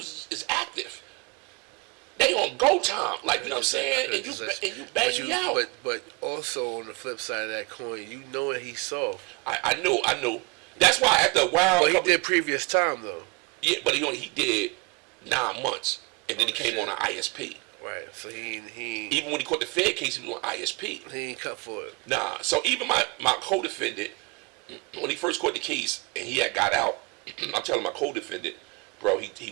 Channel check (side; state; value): left; quieter; 29.4 dB